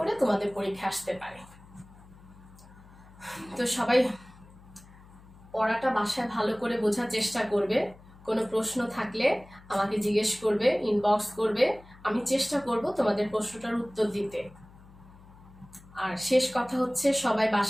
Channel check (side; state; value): left; noise; hum, 22 dB below the sound